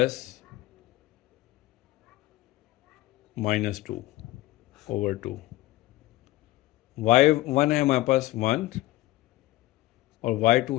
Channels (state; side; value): quieter; right; 17.6 dB